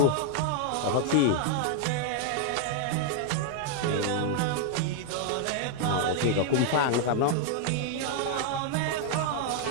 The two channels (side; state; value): both; different; correlation 0.00